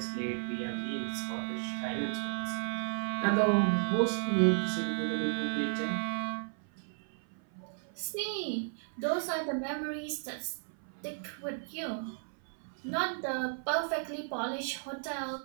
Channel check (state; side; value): silent; left; 55 dB below the other